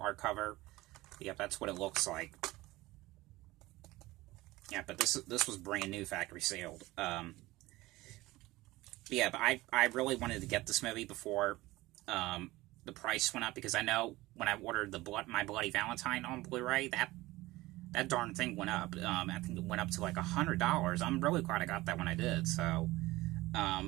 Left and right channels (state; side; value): quieter; left; 19.0 dB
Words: cover. Yep, that's what it looks like. Yeah, but this was brand new factory sealed. Yeah, but I really wanted to get this movie before the price went up, because I know when I ordered My Bloody Valentine on Blu-ray, that darn thing went up. I think it went up to like $100. I'm really glad I got that when I did. So, yeah,